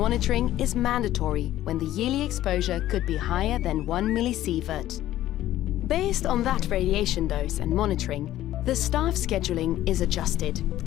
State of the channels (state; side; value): quieter; right; 13.8 dB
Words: is mandatory when the yearly exposure could be higher than 1 millisievert. Based on that radiation dose and monitoring, the staff scheduling is adjusted,